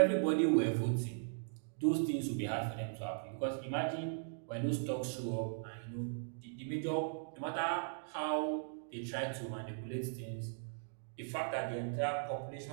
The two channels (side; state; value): left; silent; digital silence